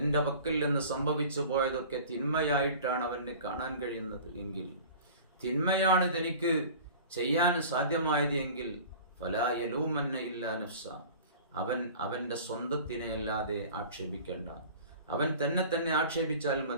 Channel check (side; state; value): both; inverted; correlation -0.41